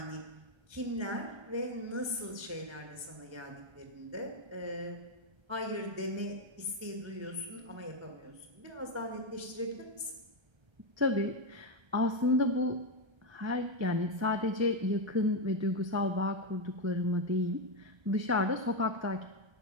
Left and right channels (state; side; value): late; left; 1.3 ms